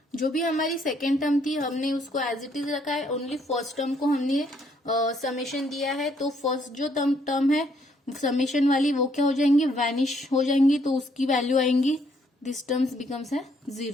जो भी हमारी सेकेंड टर्म थी हमने उसको एज इट इज रखा है, ओनली फर्स्ट टर्म को हमने समेशन दिया है. तो फर्स्ट जो टर्म है समेशन वाली वो क्या हो जाएंगी, वैनिश हो जाएंगी, तो उसकी वैल्यू आएंगी, दिस टर्म्स बिकम्स है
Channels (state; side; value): normal; both; correlation 0.69